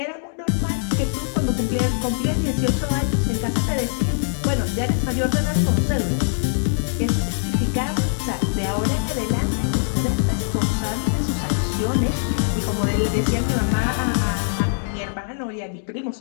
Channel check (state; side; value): silent; right; digital silence